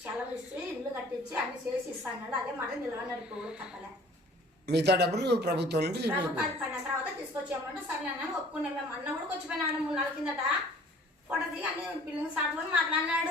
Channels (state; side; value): normal; both; correlation 0.51